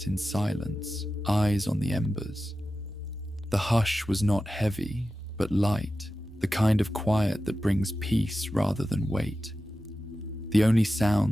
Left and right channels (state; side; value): normal; both; correlation 0.93